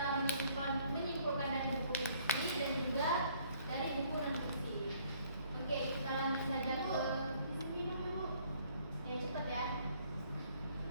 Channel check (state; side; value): inverted; both; correlation -0.62